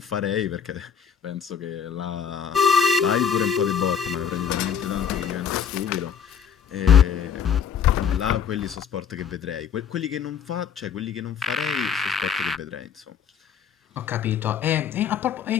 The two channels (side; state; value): right; quieter; 7.6 dB